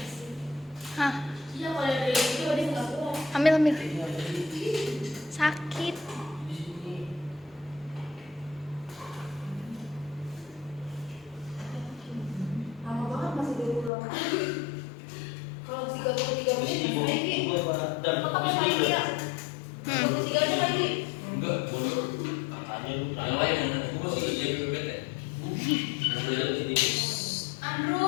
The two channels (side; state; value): right; drops out; at 13.9 s